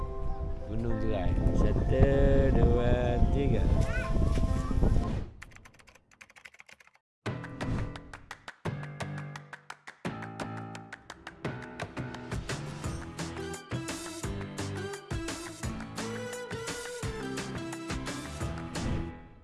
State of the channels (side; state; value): both; identical; correlation 1.00